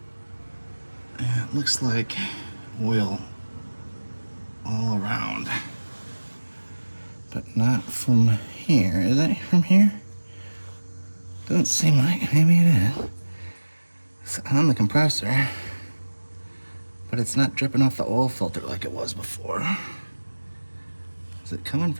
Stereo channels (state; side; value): inverted; both; correlation -1.00